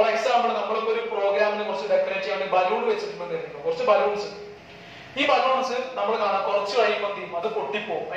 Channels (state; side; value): identical; both; correlation 1.00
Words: എക്സാമ്പിൾ നമ്മളിപ്പോ ഒരു പ്രോഗ്രാമിനെ കുറച്ച് ഡെക്കറേറ്റ് ചെയ്യാൻ വേണ്ടി ബലൂൺ വെച്ചിട്ടുണ്ടെന്ന്, കുറച്ച് ബലൂൺസ്. ഈ ബലൂൺസ് നമ്മൾ കാണാം കുറച്ച് കഴിയുമ്പോൾ എന്ത് ചെയ്യും? അത് പൊട്ടിപ്പോവും.